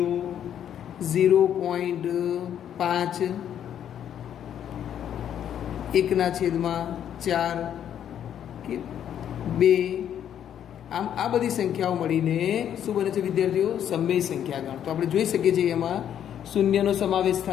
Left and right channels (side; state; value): right; quieter; 9.8 dB